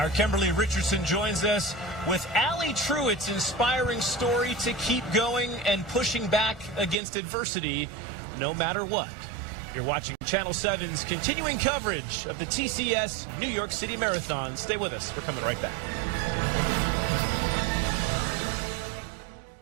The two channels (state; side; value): drops out; left; at 7.0 s